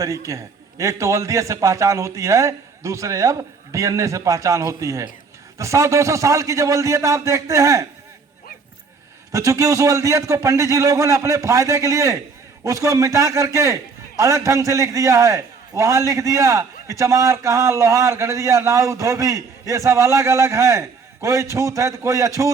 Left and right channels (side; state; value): left; quieter; 4.9 dB